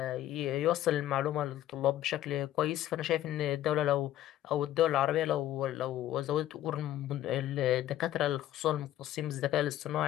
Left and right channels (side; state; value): right; quieter; 13.1 dB